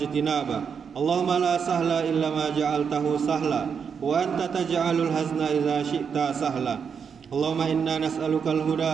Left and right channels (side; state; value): left; quieter; 6.6 dB